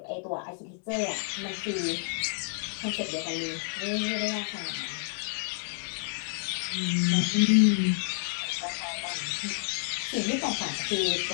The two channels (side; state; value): right; silent; digital silence